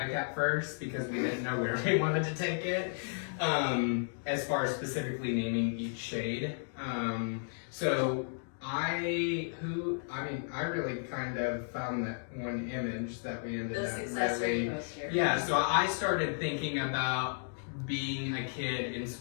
at first because we didn't know where we wanted to take it, as far as specifically naming each shade. So I really kind of found that one image that we ended The up success really, rate poster. yeah, so I started thinking about being a kid in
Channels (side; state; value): right; silent; digital silence